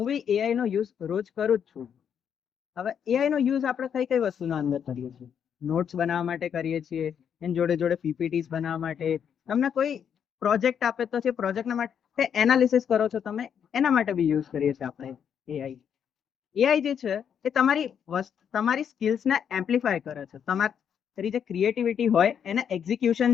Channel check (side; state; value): right; quieter; 8.1 dB